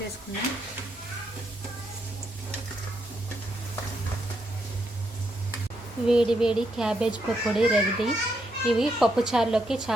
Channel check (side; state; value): both; normal; correlation 0.79